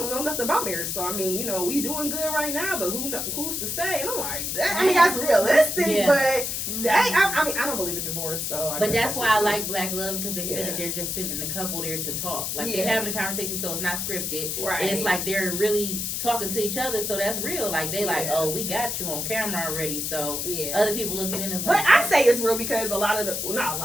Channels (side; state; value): left; noise; hiss, 2 dB below the sound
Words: know nothing about marriage. So, I mean, we doing good right now, but who's to say? And I'm like, that's realistic, but I don't believe in divorce. So, but that's why I like Black Love, because they said that they're just sending the couple there to talk. Like, they're having a conversation, so it's not scripted. Right. And it's like they're really talking to each other, so that's real. Like, they like, oh, we got you on camera already, so other people looking in is like. But I say it's real because a lot of not a